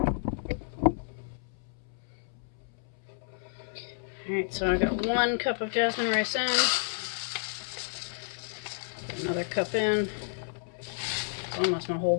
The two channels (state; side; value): silent; right; 57 dB below the other